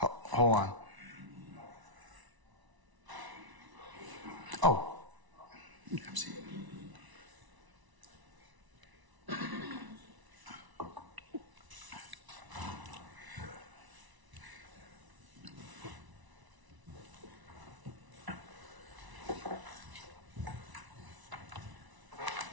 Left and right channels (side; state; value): left; late; 1.0 ms